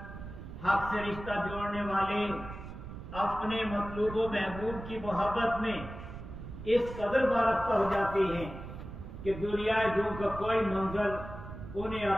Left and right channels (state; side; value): noise; right; rumble, 11 dB below the sound